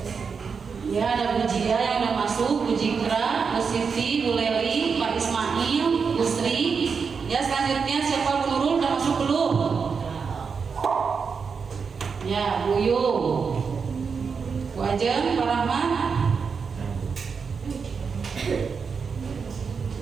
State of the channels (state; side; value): quieter; left; 5.7 dB